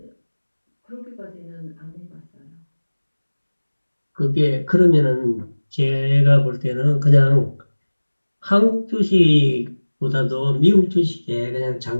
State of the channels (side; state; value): both; inverted; correlation -1.00